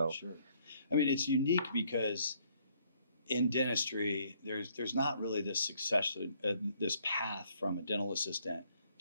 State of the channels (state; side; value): inverted; both; correlation -0.67